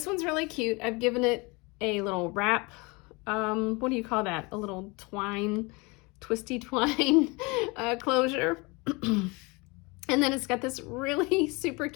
one's really cute. I've given it a little wrap. What do you call that? A little twine, twisty twine closure. And then it's got this really super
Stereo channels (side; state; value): right; quieter; 26.8 dB